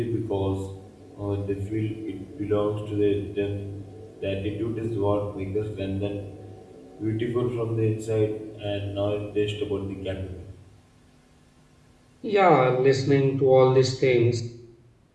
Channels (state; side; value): identical; both; correlation 1.00